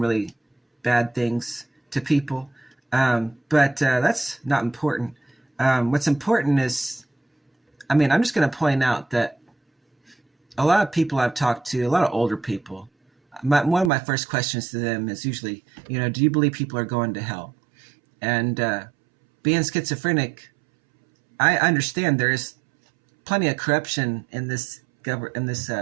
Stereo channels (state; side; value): drops out; left; at 13.9 s